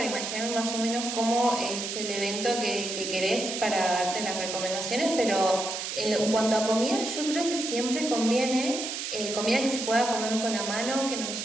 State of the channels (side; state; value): right; noise; hiss, 5 dB below the sound